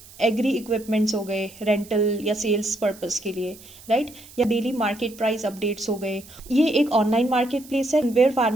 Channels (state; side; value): noise; right; hiss, 21 dB below the sound